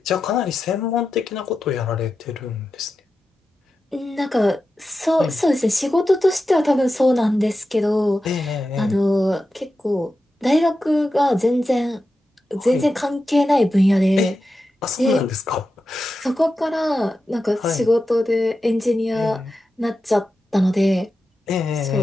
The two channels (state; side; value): normal; both; correlation 0.91